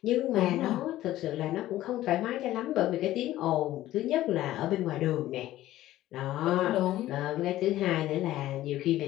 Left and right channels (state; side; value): quieter; right; 14.7 dB